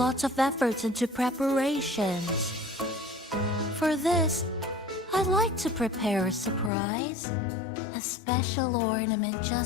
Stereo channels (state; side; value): drops out; right; at 6.7 s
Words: of efforts into preparations. For this, I'd like to prepare a surprise. A special ornament